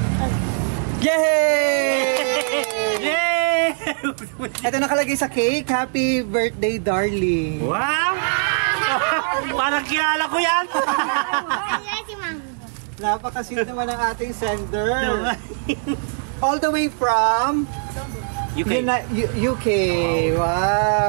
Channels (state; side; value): silent; left; 63 dB below the other